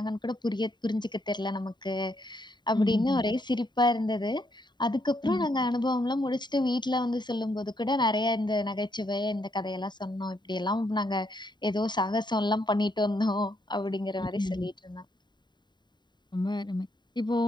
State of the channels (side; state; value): right; late; 0.22 ms